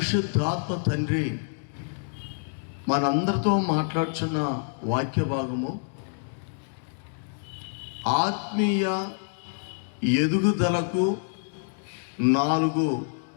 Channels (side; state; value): right; silent; digital silence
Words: తండ్రి మనందరితో మాట్లాడుచున్న వాక్య భాగము ఆత్మీయ ఎదుగుదలకు 4